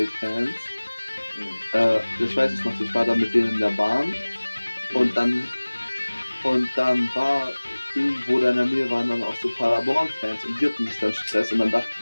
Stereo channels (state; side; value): inverted; both; correlation -1.00